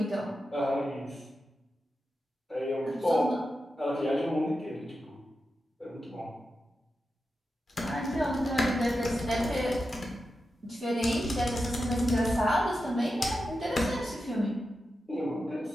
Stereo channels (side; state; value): both; normal; correlation 0.90